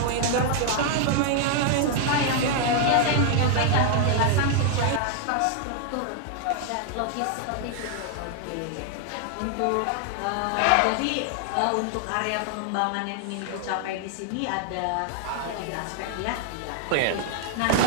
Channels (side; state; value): both; different; correlation 0.00